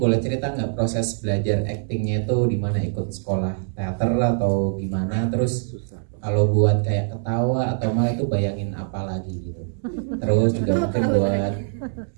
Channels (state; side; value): silent; left; 63 dB below the other